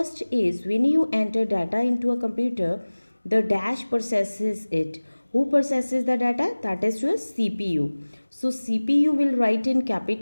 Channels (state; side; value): inverted; both; correlation -1.00